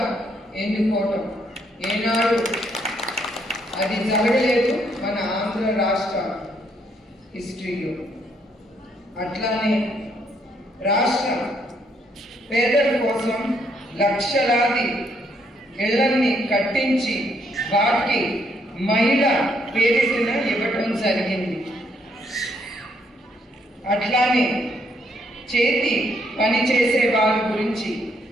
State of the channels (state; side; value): normal; both; correlation 0.72